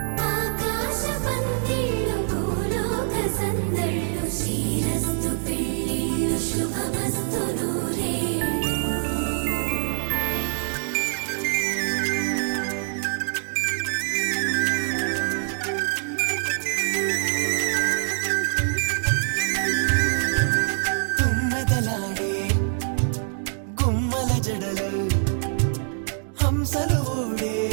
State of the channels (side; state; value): left; silent; 61 dB below the other